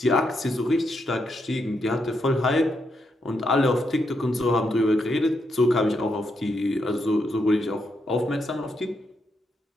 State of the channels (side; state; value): both; normal; correlation 0.80